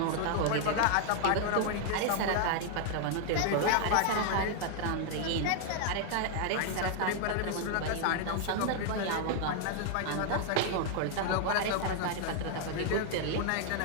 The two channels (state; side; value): different; both; correlation 0.00